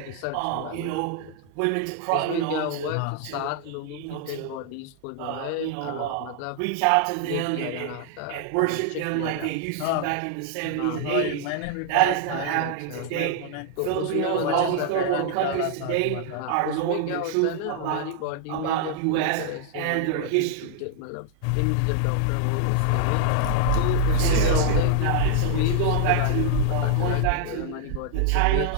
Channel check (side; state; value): both; different; correlation 0.00